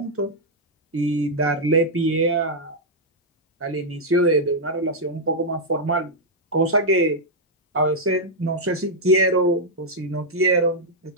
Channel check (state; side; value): normal; both; correlation -0.04